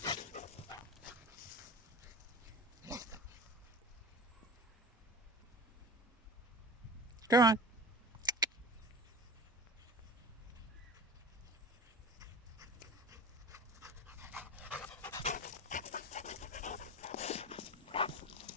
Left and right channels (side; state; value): both; normal; correlation 0.34